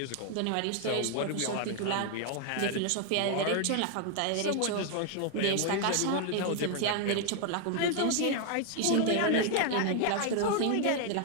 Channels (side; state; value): both; different; correlation 0.00